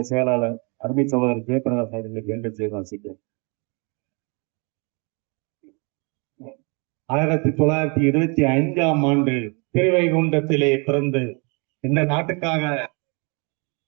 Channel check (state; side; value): quieter; left; 32.8 dB